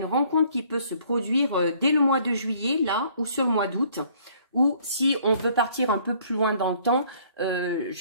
rencontre qui peut se produire dès le mois de juillet, là, ou sur le mois d'août. Ou si on veut partir un peu plus loin dans le temps,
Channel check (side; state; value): both; inverted; correlation -0.60